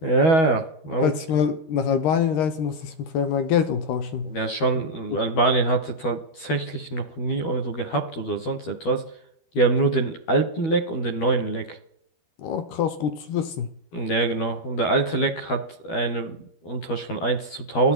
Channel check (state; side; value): late; right; 12 ms